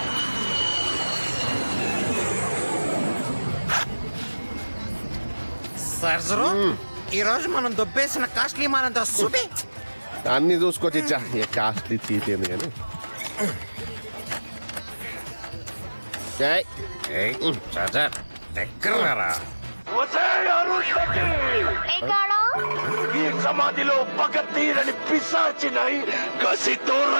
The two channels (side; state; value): both; inverted; correlation -1.00